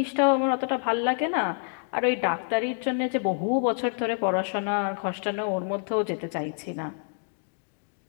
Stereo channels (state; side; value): silent; right; 57 dB below the other